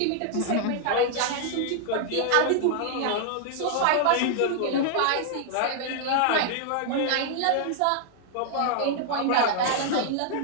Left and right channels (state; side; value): different; both; correlation 0.00